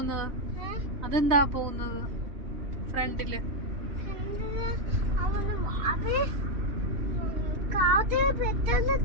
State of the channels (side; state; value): left; late; 3.1 ms